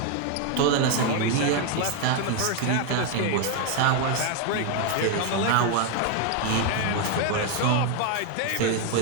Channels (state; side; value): different; both; correlation 0.01